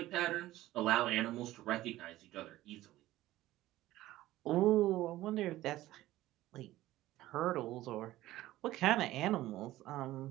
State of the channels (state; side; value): quieter; left; 15.8 dB